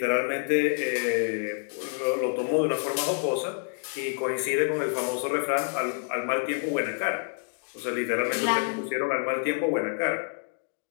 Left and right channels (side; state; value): right; silent; 59 dB below the other